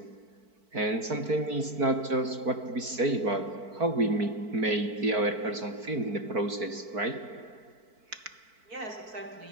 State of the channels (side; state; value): left; late; 4.5 ms